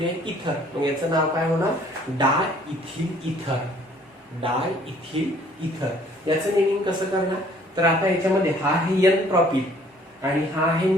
आहे, इथर. मग याचं नाव काय होणार, डाय इथिल इथर. डाय इथिल इथर याचं नेमिंग कसं करणार, तर आता याच्यामध्ये हा आहे एन प्रॉपिल आणि हा आहे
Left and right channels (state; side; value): normal; both; correlation 0.58